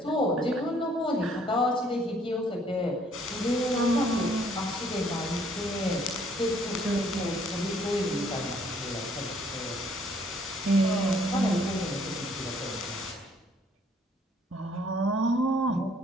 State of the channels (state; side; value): normal; both; correlation 0.63